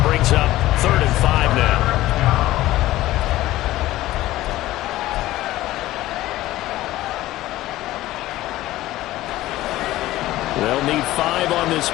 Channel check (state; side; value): quieter; right; 16.1 dB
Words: brings up 3rd and 5 now. They'll need 5 on this